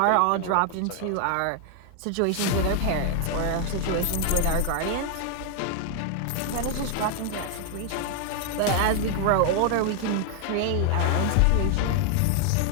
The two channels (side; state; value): both; different; correlation 0.00